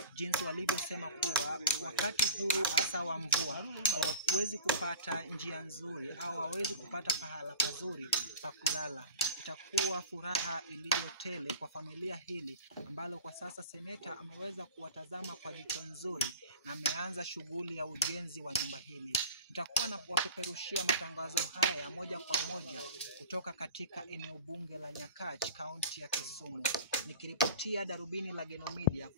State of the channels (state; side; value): inverted; both; correlation -0.37